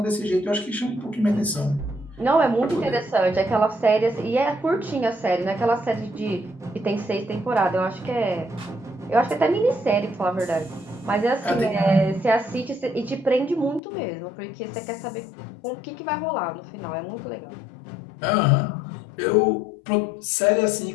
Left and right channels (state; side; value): drops out; right; at 13.8 s